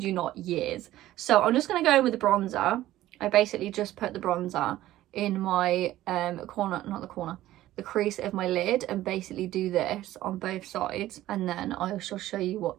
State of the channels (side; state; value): left; quieter; 14.7 dB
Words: you not, years. So I'm just going to go in with the bronzer. I basically just put the bronzer in my the crease of my lid, and basically do this on both sides, and then I shall show you